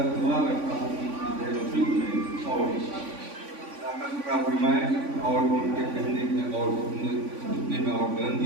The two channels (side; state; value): left; late; 3.5 ms